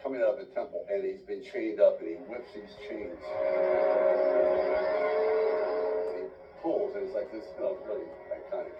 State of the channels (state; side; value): identical; both; correlation 1.00